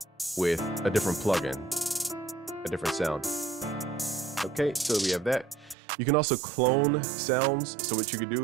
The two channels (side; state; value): left; drops out; at 5.8 s